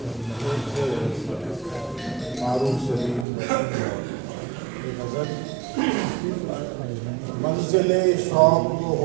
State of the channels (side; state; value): left; drops out; at 3.2 s